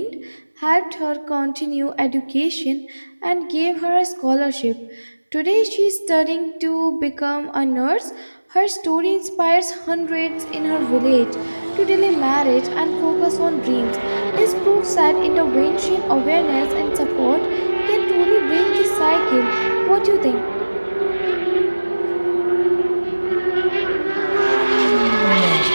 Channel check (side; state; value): both; inverted; correlation -1.00